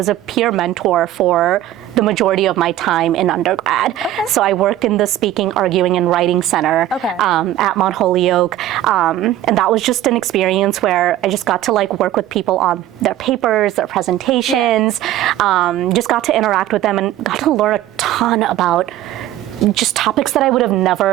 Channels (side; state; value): left; quieter; 13.4 dB